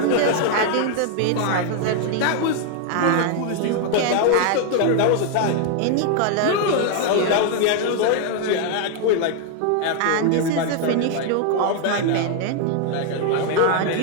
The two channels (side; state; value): both; different; correlation 0.00